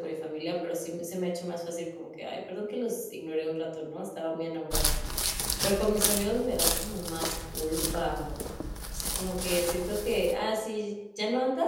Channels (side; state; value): both; identical; correlation 1.00